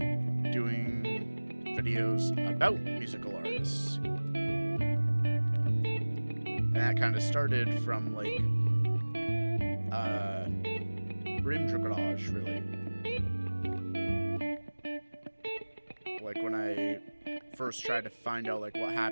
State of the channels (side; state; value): both; inverted; correlation -1.00